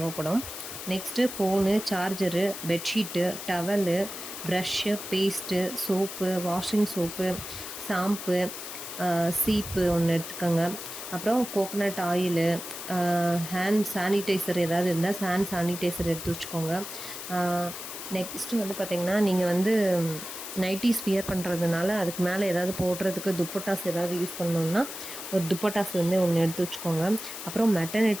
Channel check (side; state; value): left; noise; hiss, 9 dB below the sound